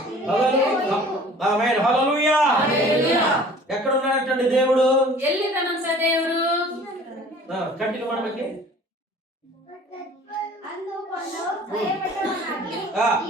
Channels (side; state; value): both; normal; correlation 0.48